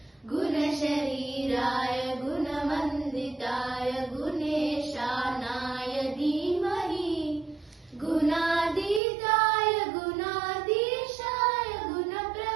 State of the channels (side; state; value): left; drops out; at 9.0 s